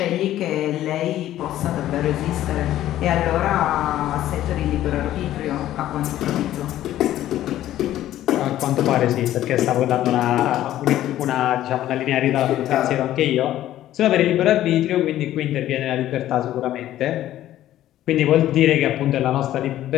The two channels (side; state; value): right; quieter; 13.2 dB